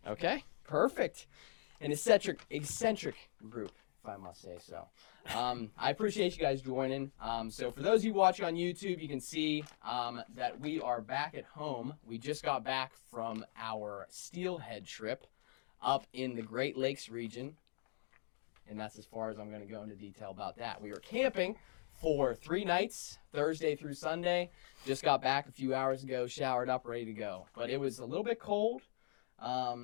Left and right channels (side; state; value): right; silent; digital silence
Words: Okay, perfect. An eccentric group, if I must say so. I appreciate you guys joining. So for those of you watching on YouTube, you can see that we are back at home. We just got back from our steelhead trip up in the Great Lakes region. And that's as far as I'm going to go into detail about that. We were camping for 3 nights, Thursday through Sunday. Just got back a few hours ago, showered up, ready to go. But it was a little bit cold.